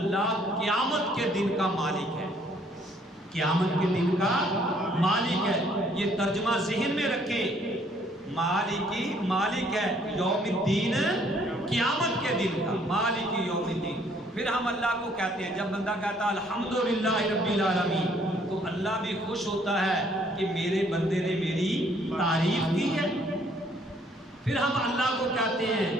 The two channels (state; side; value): normal; both; correlation 0.63